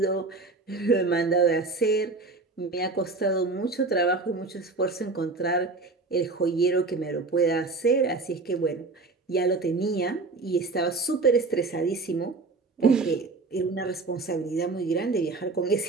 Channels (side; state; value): left; quieter; 3.7 dB